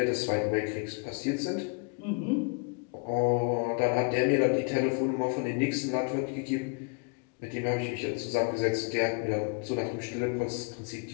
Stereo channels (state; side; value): quieter; right; 34.4 dB